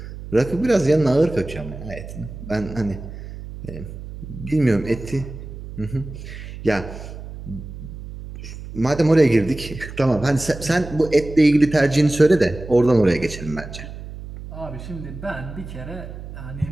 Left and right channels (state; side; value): noise; right; hum, 12 dB below the sound